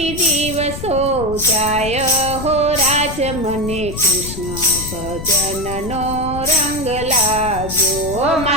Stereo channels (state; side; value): noise; left; rumble, 9 dB below the sound